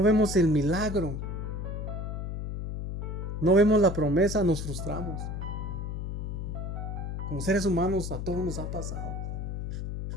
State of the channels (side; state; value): left; noise; hum, 4 dB below the sound